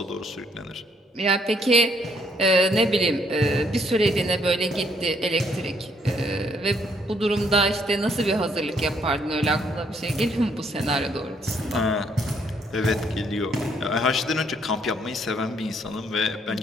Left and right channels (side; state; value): both; normal; correlation 0.69